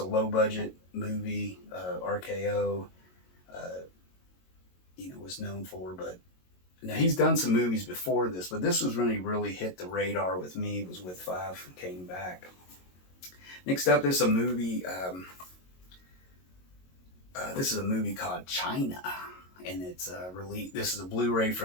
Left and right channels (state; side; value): late; right; 22 ms